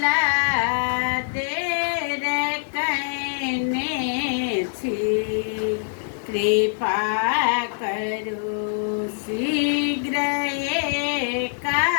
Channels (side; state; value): right; silent; 62 dB below the other